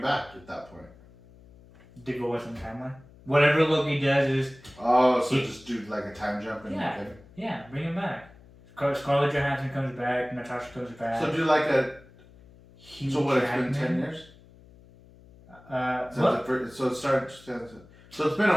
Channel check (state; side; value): noise; left; hum, 24 dB below the sound